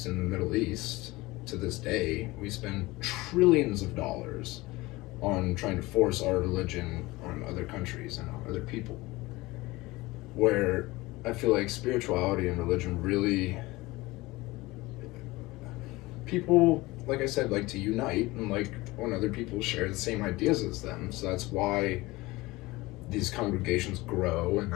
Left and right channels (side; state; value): right; quieter; 20.7 dB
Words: in the Middle East to this day. We spend trillions of dollars on trying to force our religion on other countries and on other people. Where I feel like spirituality and religion really, people, like I said, like to unite and like when other people share the same ideas as them. So that's why these congregations grow, and